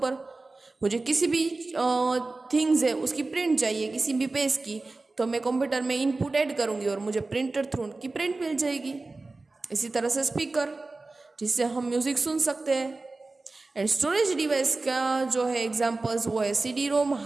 मुझे किसी भी थिंग्स है उसकी प्रिंट चाहिए, किसी भी पेज की, तो मैं कंप्यूटर में इनपुट ऐड करूंगी और मुझे प्रिंटर थ्रू की प्रिंट मिल जाएगी. इसी तरह से स्पीकर, जिससे हम म्यूजिक सुन सकते हैं. एंड स्टोरेज डिवाइस का जो है एग्जांपल्स वो है CD ROM,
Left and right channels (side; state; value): left; quieter; 3.4 dB